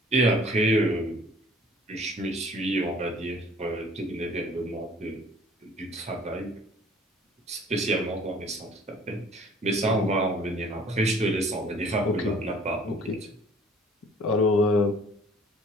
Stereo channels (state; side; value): normal; both; correlation 0.53